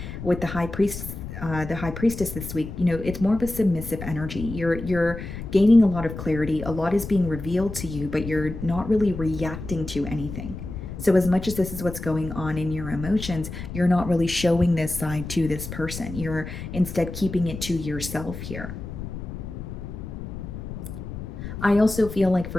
with the high priestess this week, it's more of a submissive energy. You're gaining a lot of clarity. A lot is being revealed to you, but you're not really reacting to anything. So as much as this is what's going on in your emotions, you're not really showing this side to this person. You're instead keeping it to yourself here. I also feel like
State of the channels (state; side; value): noise; left; rumble, 9 dB below the sound